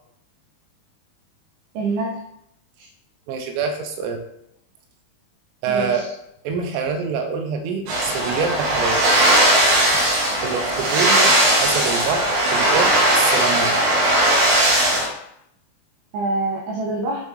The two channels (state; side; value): late; left; 20 ms